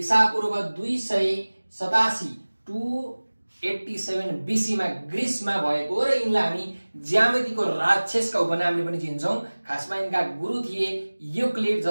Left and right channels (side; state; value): both; inverted; correlation -1.00